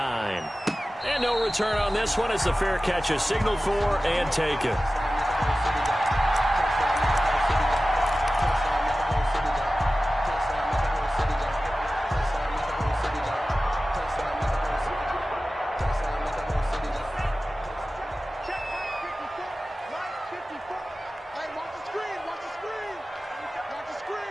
And no return on this one as the fair catch is signaled for and taken.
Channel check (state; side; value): normal; both; correlation 0.96